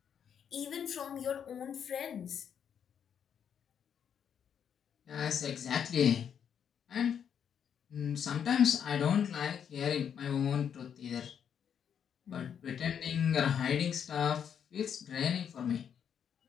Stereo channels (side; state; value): right; quieter; 8.1 dB